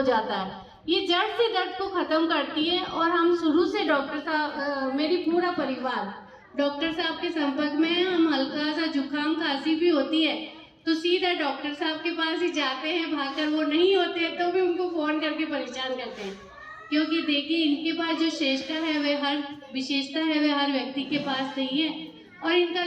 जाता है। ये जड़ से दर्द को खत्म करती है। और हम शुरू से डॉक्टर साहब, मेरी पूरा परिवार डॉक्टर साहब के संपर्क में है। हम हल्का सा जुकाम खांसी भी होती है तो सीधा डॉक्टर साहब के पास ही जाते हैं भागकर। वो नहीं होते हैं तो भी उनको फ़ोन करके परेशान करते हैं, क्योंकि देखिए इनके पास जो विशेषता है वह हर व्यक्ति के पास नहीं है। और इनका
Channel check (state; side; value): identical; both; correlation 1.00